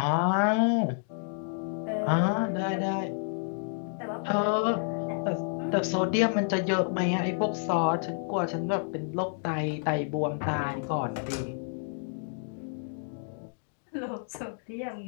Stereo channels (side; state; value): right; silent; 58 dB below the other